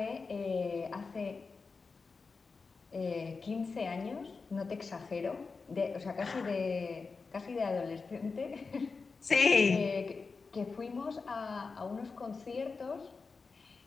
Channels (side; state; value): right; quieter; 4.5 dB